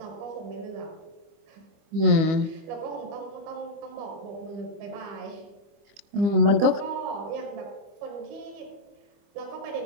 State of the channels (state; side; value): late; left; 25 ms